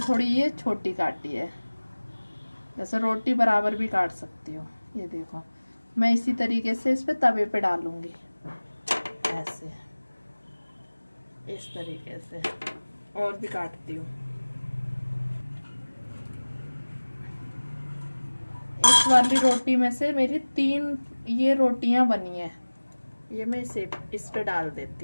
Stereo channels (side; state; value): both; inverted; correlation -1.00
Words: ये छोटी काटी है। जैसे रोटी बराबर भी काट सकती हो। ये देखो मैं इसी तरीके से इस पे तवे पे डालूंगी ऐसे, इस तरीके से। और भी काटती हूँ। इस वाली रोटी में से मेरी 3 ये रोटियां बनी है। ये मैं इस पे डाल